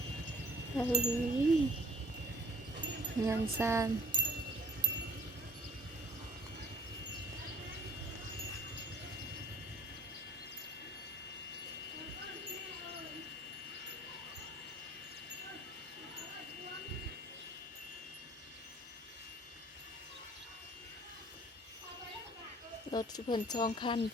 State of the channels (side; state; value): both; normal; correlation 0.53